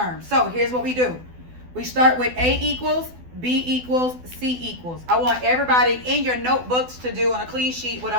So here's what we do. We start with A equals, B equals, C equals. I want everybody in your notebooks to do on a clean sheet what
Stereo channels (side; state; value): left; late; 12 ms